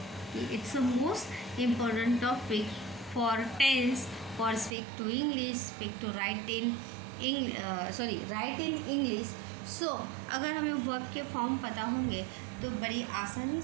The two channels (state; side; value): drops out; left; at 4.7 s